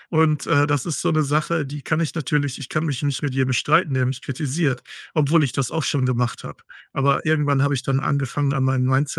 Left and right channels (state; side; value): identical; both; correlation 1.00